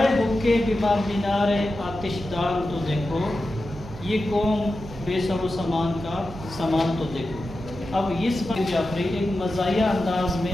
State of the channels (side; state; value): right; noise; hum, 15 dB below the sound